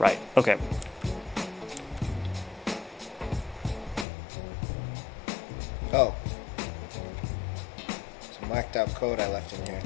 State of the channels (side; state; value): right; drops out; at 4.0 s